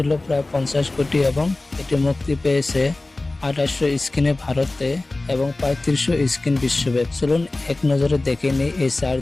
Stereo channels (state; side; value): quieter; right; 3.0 dB